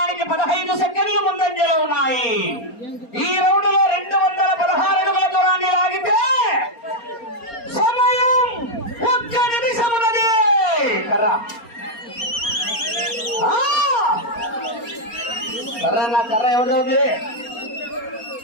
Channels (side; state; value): right; late; 4.3 ms